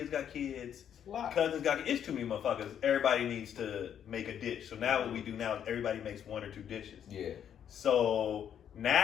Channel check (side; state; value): right; quieter; 9.1 dB